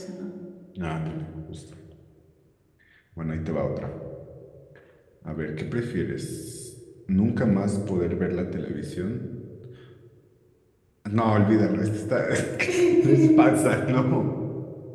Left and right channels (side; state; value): both; identical; correlation 1.00